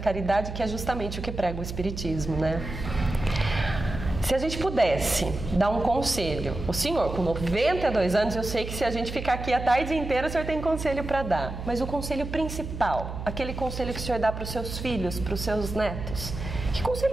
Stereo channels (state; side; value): noise; right; hum, 7 dB below the sound